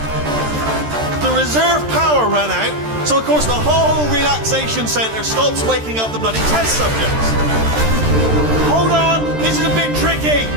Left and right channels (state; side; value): late; left; 13 ms